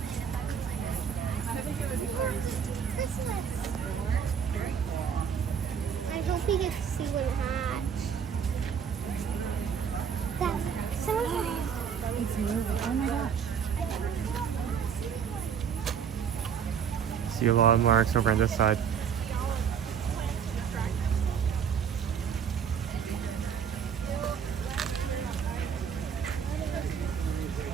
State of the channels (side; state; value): left; quieter; 7.4 dB